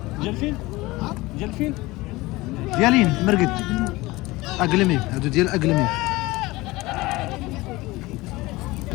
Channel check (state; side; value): quieter; right; 20.5 dB